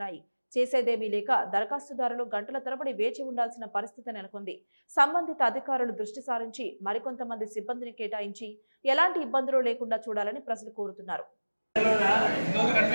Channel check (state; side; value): inverted; both; correlation -1.00